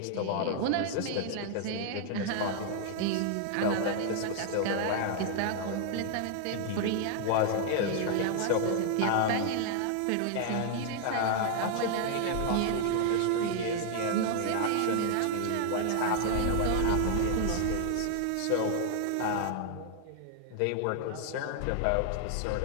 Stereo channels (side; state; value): both; different; correlation 0.00